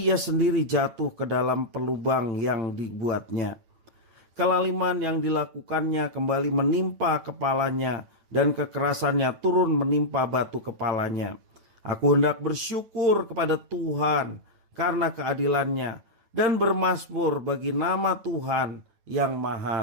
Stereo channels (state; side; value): late; left; 9.0 ms